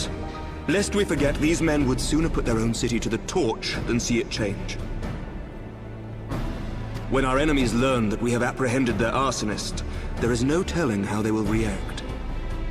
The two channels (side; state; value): both; identical; correlation 1.00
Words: Lest we forget, these men would sooner put their own city to the torch than see it change. When our enemies learn that we have apprehended their arsonist, there is no telling how they will react.